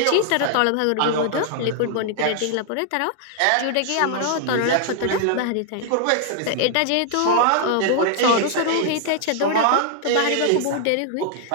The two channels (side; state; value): both; different; correlation 0.00